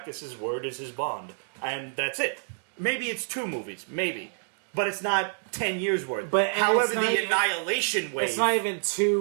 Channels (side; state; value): left; silent; digital silence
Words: word is his bond. And that's it. Maybe it's 2 movies, maybe. But it's not 10 years worth. However, the Annihilation wave... It's not even